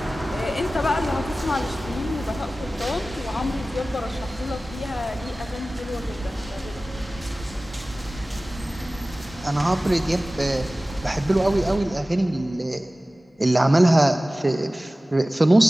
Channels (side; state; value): both; normal; correlation 0.97